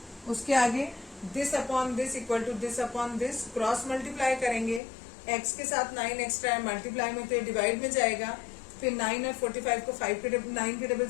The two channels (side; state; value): right; drops out; at 4.8 s